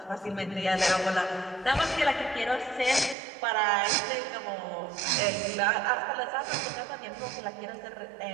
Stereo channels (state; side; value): drops out; left; at 3.2 s